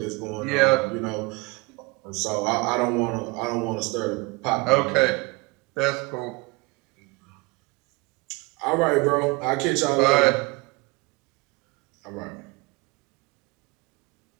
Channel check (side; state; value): left; quieter; 25.4 dB